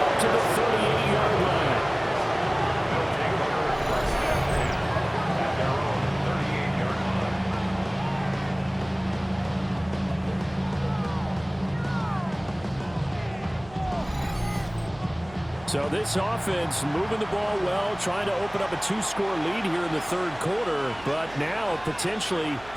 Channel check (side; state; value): right; noise; hum, 20 dB below the sound